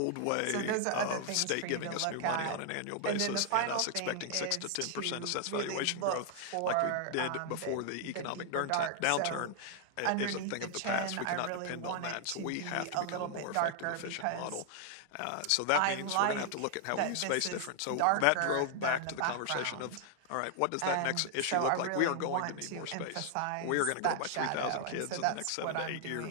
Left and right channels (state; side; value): different; both; correlation 0.00